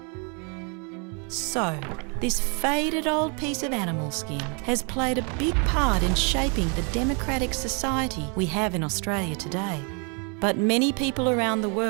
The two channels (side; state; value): left; quieter; 35.7 dB